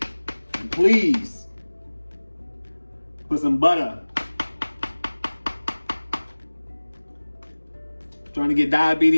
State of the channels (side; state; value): both; inverted; correlation -1.00